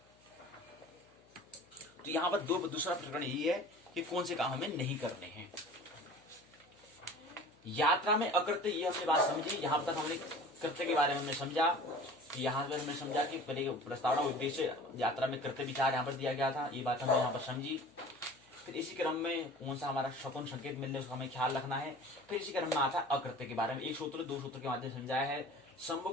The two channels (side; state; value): left; noise; hum, 30 dB below the sound